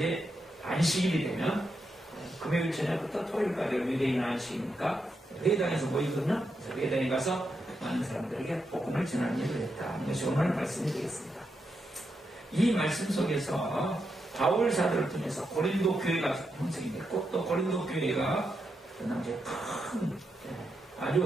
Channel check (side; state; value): both; normal; correlation 0.84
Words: 안식일이 되면 금요일 저녁부터 토요일까지 유대인 안식이니까 회당에서 모이거든요. 그래서 회당에 가서 많은 사람들에게 복음을 전하는 일을 했다. 이것이 오늘 말씀이 되겠습니다. 이 말씀 속에서 바울 사도를 통해서 고린도 교회가 형성이 됐고, 또 고린도 교회가 그 당시에 큰,